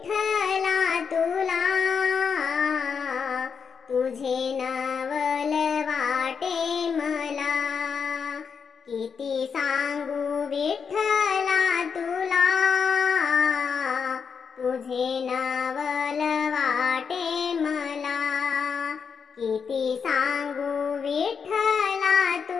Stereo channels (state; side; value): quieter; right; 6.3 dB